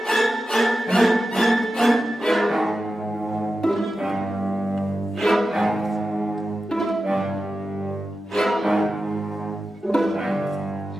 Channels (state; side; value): normal; both; correlation 0.92